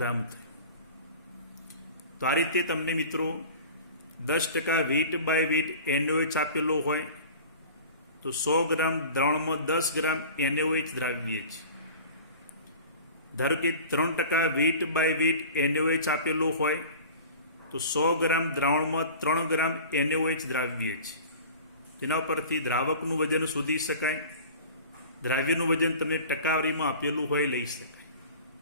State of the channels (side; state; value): both; inverted; correlation -0.40